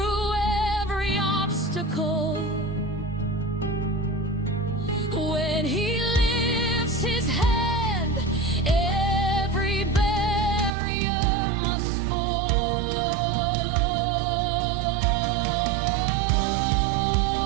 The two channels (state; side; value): drops out; left; at 10.7 s